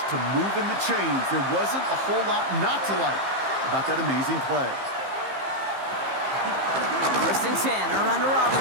to moving the chains, there wasn't a whole lot not to like about that amazing play. 1st and 10, around to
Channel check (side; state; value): left; late; 15 ms